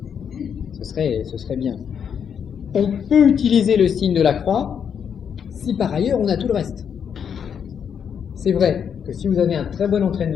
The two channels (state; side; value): quieter; right; 7.6 dB